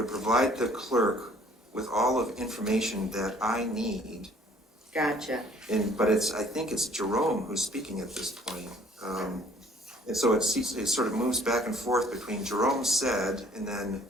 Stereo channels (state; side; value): normal; both; correlation 0.57